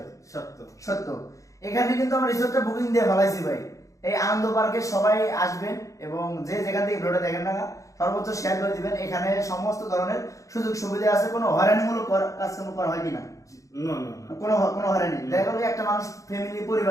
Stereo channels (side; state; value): right; late; 0.16 ms